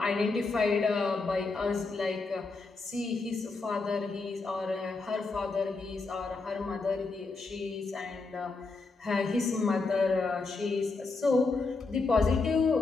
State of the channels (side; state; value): right; quieter; 3.9 dB